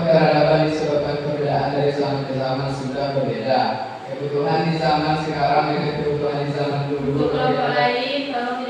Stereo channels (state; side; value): identical; both; correlation 1.00